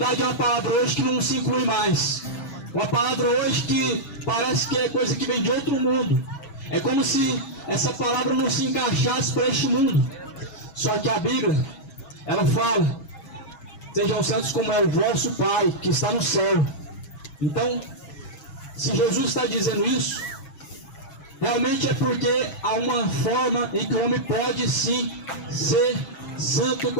é uma palavra hoje que não se inclui mais. Uma palavra hoje que parece que é coisa que vem de outro mundo. É como se essa palavra não se encaixasse para este mundo. Só que a Bíblia, ela fala: sejam santos como é o vosso Pai que está no céu. Então, se Jesus está dizendo isso, realmente é porque há uma forma em que o homem pode sim ser santo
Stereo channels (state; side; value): late; right; 6.2 ms